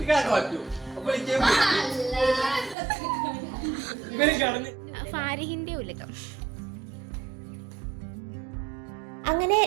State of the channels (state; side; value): drops out; left; at 2.8 s